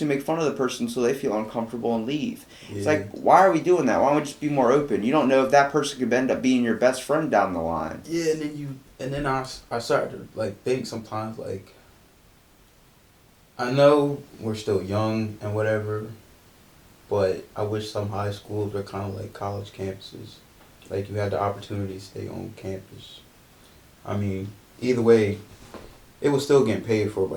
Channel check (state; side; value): identical; both; correlation 1.00